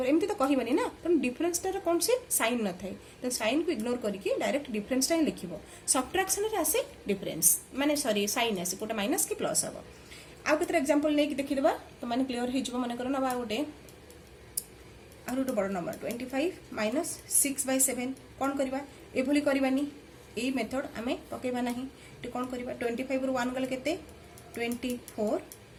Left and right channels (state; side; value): identical; both; correlation 1.00